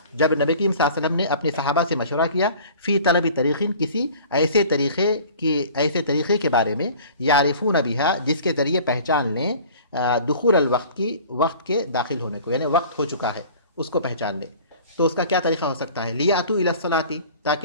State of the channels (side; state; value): both; inverted; correlation -0.46